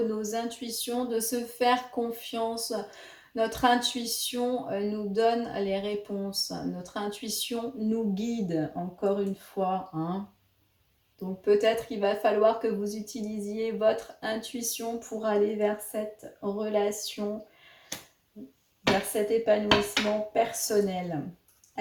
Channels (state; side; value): identical; both; correlation 1.00